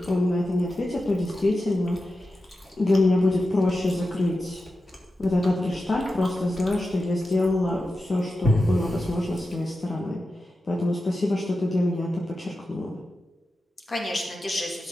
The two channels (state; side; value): normal; both; correlation 0.91